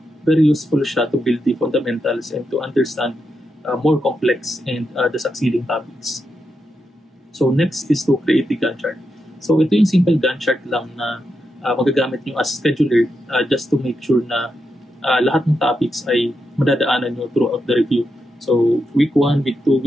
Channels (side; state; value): both; normal; correlation 0.85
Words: very useful siya to build the fundamentals and to understand more complex and the succeeding topics. So next is to create the Gantt chart. So ito yung simple Gantt chart lang na magagamit nyo as scheduler just to make sure na lahat ng topics ay madadaanan nyo throughout the review. So week 1, week 2,